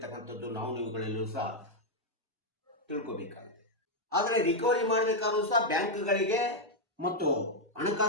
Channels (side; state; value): both; normal; correlation 0.00